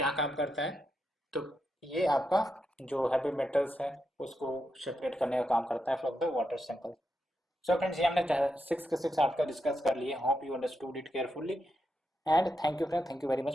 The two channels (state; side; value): normal; both; correlation 0.84